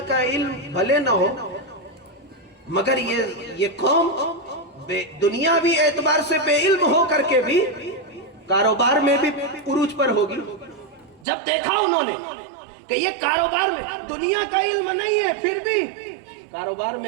کا علم بھلے نہ ہو مگر یہ قوم دنیاوی اعتبار سے بے علم ہو کر کے بھی کاروبار میں بھی عروج پر ہوگی۔ جب دیکھا انہوں نے کہ یہ کاروبار میں دنیا کا علم نہیں ہے، پھر بھی کاروبار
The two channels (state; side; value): drops out; left; at 11.2 s